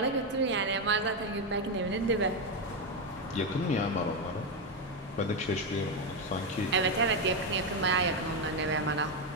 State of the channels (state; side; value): normal; both; correlation 0.08